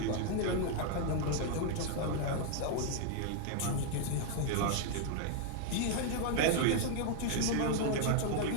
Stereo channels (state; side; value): different; both; correlation 0.00